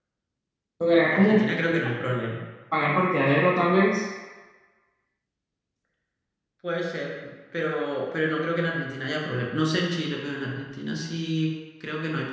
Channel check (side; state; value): both; identical; correlation 1.00